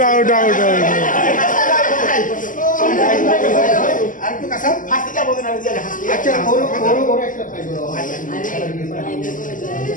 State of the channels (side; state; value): right; late; 0.38 ms